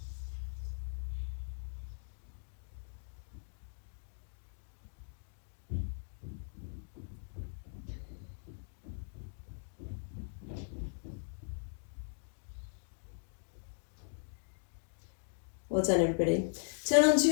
Well done, everybody. Turn onto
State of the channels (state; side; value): silent; right; digital silence